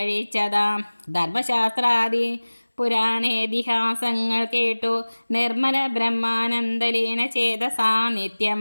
ധർമ്മശാസ്ത്രാദി പുരാണേതിഹാസങ്ങൾ കേട്ടു നിർമ്മല ബ്രഹ്മാനന്ദലീന ചേതസാ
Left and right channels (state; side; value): inverted; both; correlation -1.00